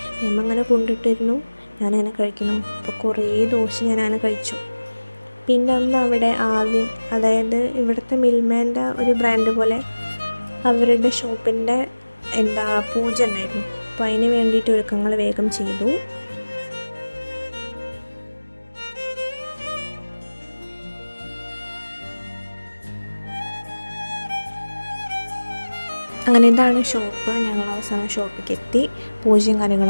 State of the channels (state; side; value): inverted; both; correlation -1.00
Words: മേമ്മ അങ്ങനെ കൊണ്ടിട്ടിരുന്നു. ഞാനങ്ങനെ കഴിക്കുന്നു. അപ്പോൾ കുറേ ദോശ ഞാനങ്ങനെ കഴിച്ചു. പിന്നെ അന്ന് അവിടെ ആവിൻ, അതായത് ഇവിടുത്തെ മിൽമേൻ്റെ ഒരു ബ്രാൻഡ് പോലെ അവരുടെ ഷോപ്പിൻ്റെ പൂജ ഉണ്ടായിരുന്നു. അപ്പോൾ അതിന് വേണ്ടിയിട്ട് ഒരുക്കങ്ങൾ വേഗം ചെയ്തു. അങ്ങനെ ഇതാണ് ഷോപ്പ്. ഞങ്ങൾ അവസാനം ഷോപ്പിലേക്ക് എത്തി. പൂജയും